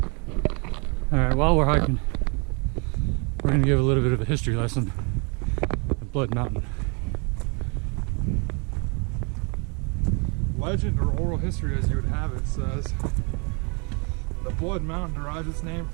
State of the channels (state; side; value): quieter; left; 33.8 dB